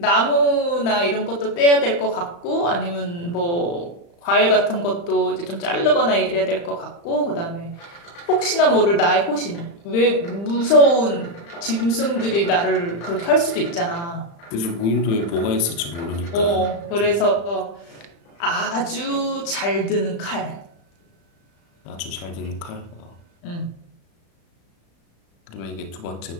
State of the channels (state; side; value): late; right; 35 ms